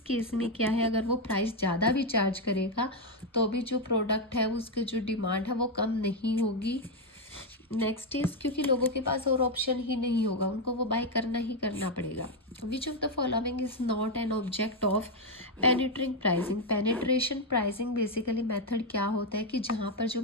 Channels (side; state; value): both; normal; correlation 0.04